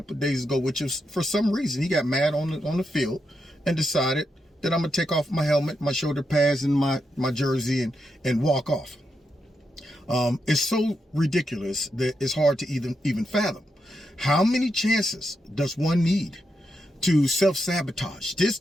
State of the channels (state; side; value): normal; both; correlation 0.84